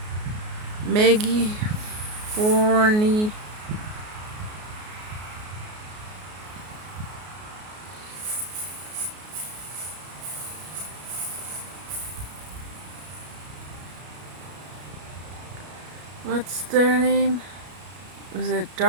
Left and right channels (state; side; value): late; left; 33 ms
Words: Maggie Forney. What's their name? Was it